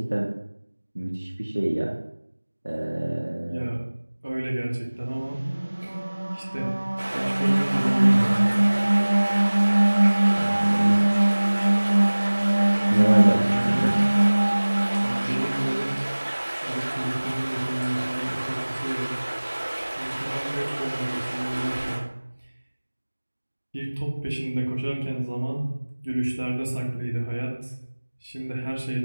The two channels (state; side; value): inverted; both; correlation -1.00